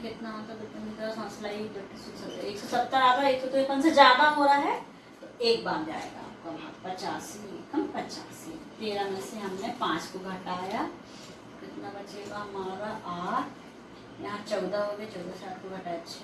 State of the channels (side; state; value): both; identical; correlation 1.00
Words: कितना होता है, 170 आ रहा है, 153 से ज्यादा हो रहा है तो एक बार जाएगा आपका भाग। 85 एकम 85। 13 में से हमने 5 को घटाया, कितना बचेगा हमारा? 8। यहाँ 14 हो गए, 14 से 8 को घटाया 6,